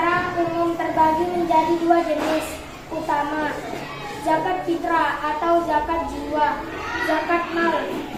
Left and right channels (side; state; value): both; identical; correlation 1.00